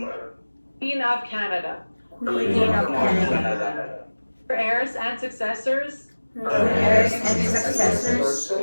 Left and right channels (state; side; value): inverted; both; correlation -1.00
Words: Queen of Canada, Queen of Canada, her heirs and successors, her heirs and